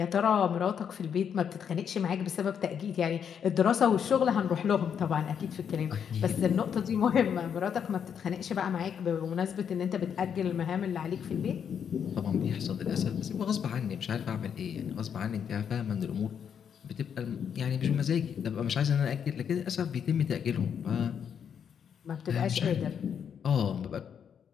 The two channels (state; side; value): quieter; right; 7.8 dB